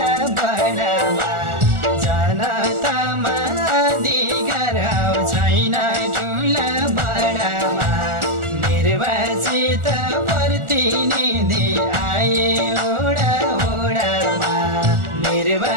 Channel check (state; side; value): late; left; 1.4 ms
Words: बडामा जनतामा अधिकार छैन ठुला बडामा निर्वाचित प्रतिनिधि आए ओडा ओडामा